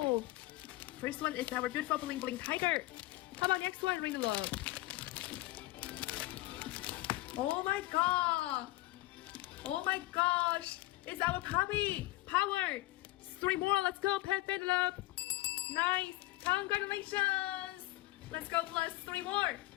first one is our beautiful bling bling tiger. How about next one? Ring the love. Oh my god. Oh my gosh. It's our puppy. Power. 3 more. Let's go. Pet love. Nice. Congratulations. Let's go plus 3 more.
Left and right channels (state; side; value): quieter; right; 19.0 dB